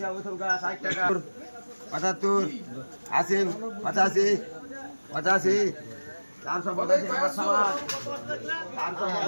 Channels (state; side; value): inverted; both; correlation -1.00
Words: থুকা, 60 টাকা, 75, 80, 85, 85, 485 নগদ সামান,